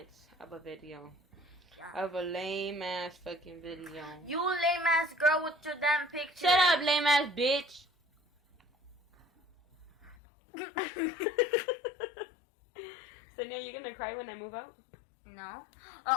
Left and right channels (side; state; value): right; drops out; at 10.2 s